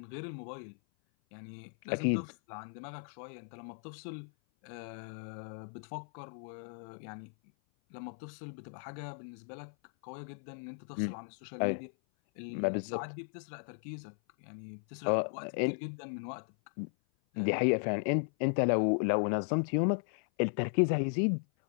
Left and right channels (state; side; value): silent; right; 54 dB below the other